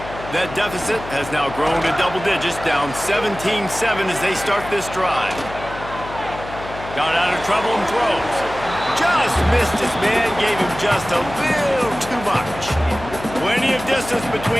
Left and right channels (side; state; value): left; noise; hum, 12 dB below the sound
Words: That deficit has now grown to double digits, down 17-7 as they start this drive. Got out of trouble and throws. Just missed his man, gave him just a little too much. Plenty of distance